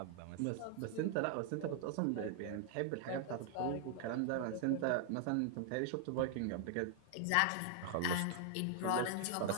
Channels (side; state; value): both; different; correlation 0.00